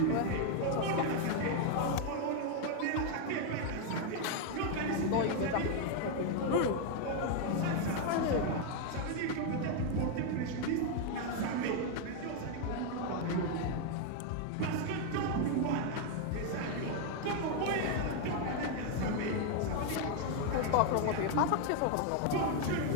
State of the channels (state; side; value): different; both; correlation 0.01